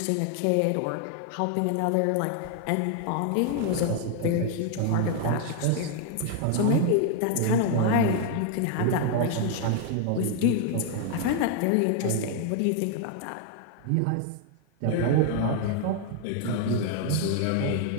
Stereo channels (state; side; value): different; both; correlation 0.00